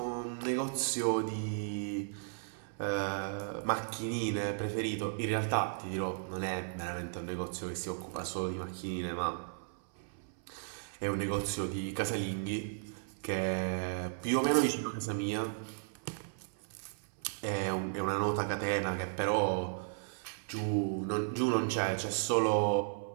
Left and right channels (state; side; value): silent; left; 54 dB below the other